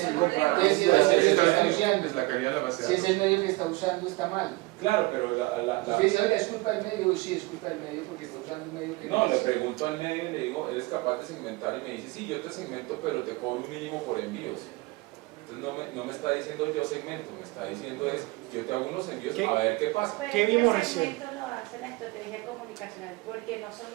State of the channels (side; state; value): left; quieter; 22.6 dB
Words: el el comprar problema. bases Sí, de datos sí, que sí, está sí, usando. Es la calidad de la base de Si es datos. el medio que está usando, está mal. Claro, pero Usted dice, oiga, es culpa del medio. Sí, es culpa del medio porque está usando un medio que no, le es. pregunto al medio y le digo, ¿eres capaz de segmentar? Y me dice, sí, yo te segmento, pero te cobro un mínimo por envíos. Entonces no me está diciendo yo segmento, me está diciendo es, yo te hago unos envíos ¿Qué? a ver qué pasa. Pero ¿Qué es que vimos el recién? segmento lo hace la estrategia comunicacional porque no son